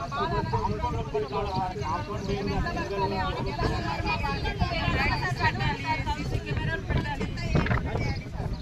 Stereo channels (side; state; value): both; identical; correlation 1.00